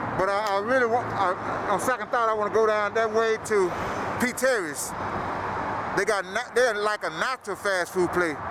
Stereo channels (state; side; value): identical; both; correlation 1.00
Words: But I really want, on second thought, I want to go down that way to P.Terry's. They're like a natural fast food place.